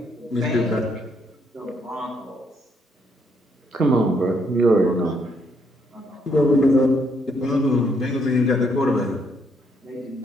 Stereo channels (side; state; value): both; normal; correlation 0.72